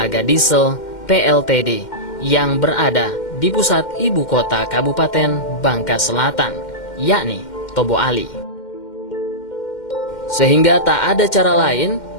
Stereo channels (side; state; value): right; late; 2.1 ms